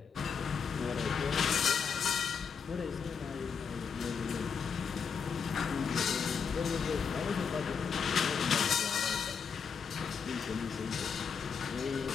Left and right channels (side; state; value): right; quieter; 6.2 dB